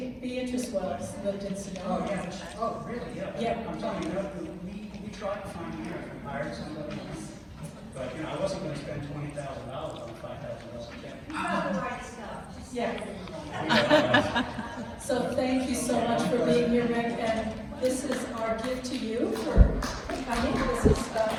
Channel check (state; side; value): identical; both; correlation 1.00